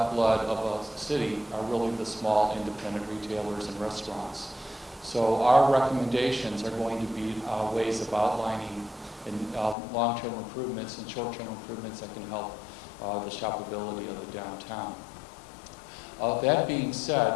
of a city are really the small independent retailers and restaurants. So our recommendations are going to be ways of outlining long-term improvements and short-term improvements that can help the shoppability of the downtown. That being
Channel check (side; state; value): right; drops out; at 9.8 s